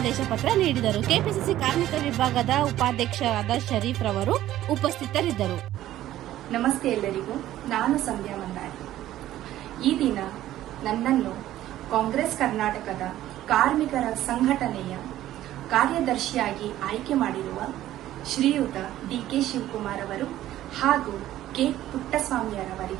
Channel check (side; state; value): left; quieter; 13.7 dB